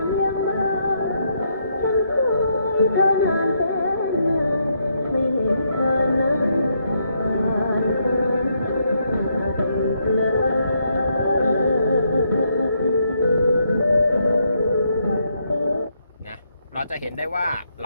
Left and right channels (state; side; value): inverted; both; correlation -0.76